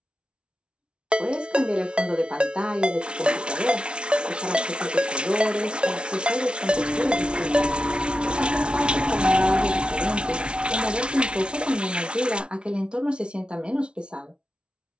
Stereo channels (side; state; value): left; late; 0.057 ms